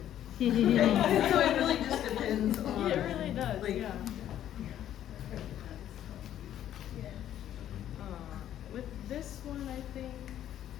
So it really just depends on. Yeah, it really does. Like, yeah. With this one, I think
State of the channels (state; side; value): quieter; right; 11.3 dB